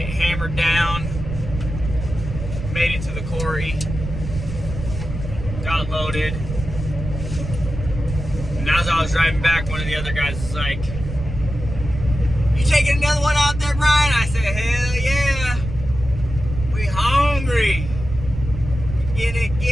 hammered down, made it to the quarry, got loaded. And as I was driving back, one of the other guys was like, "You taking another one out there, Brian?" I said, "Hell yeah. We hungry. Get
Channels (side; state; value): right; noise; rumble, 7 dB below the sound